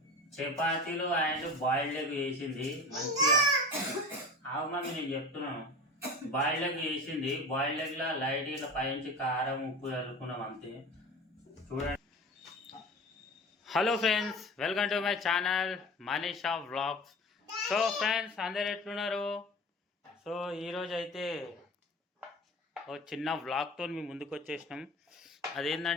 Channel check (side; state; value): both; normal; correlation 0.35